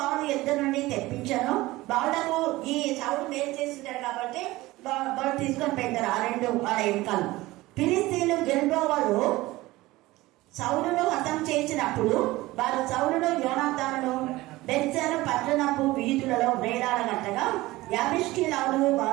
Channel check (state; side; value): quieter; left; 18.9 dB